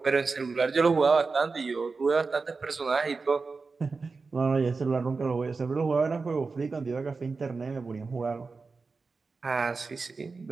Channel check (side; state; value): left; quieter; 4.3 dB